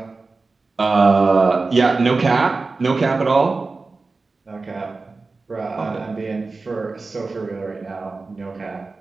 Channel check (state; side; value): quieter; left; 3.9 dB